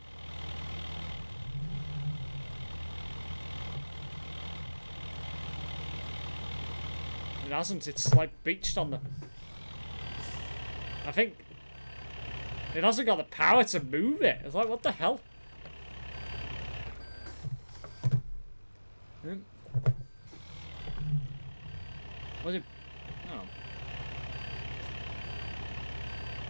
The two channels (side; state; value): both; inverted; correlation -1.00